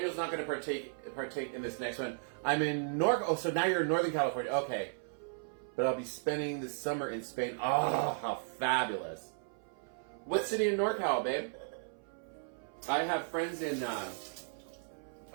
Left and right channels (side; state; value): left; silent; 54 dB below the other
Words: partake in this next one. I'm in so now you're in Northern California. Okay. But I'll be spending the summer in Spain. Oh, how fabulous. What city in NorCal, babe? I have friends in,